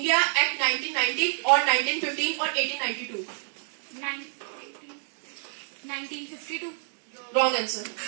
Act 1990 or 1915 or 1892. 1952. Wrong answer.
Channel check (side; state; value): left; silent; digital silence